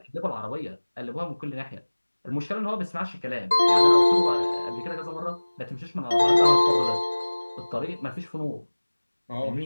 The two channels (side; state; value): both; inverted; correlation -1.00